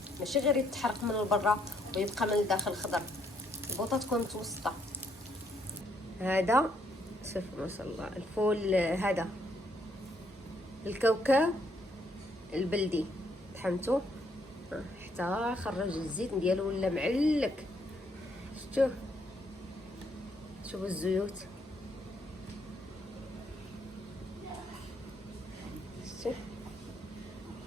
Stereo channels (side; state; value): both; normal; correlation 0.71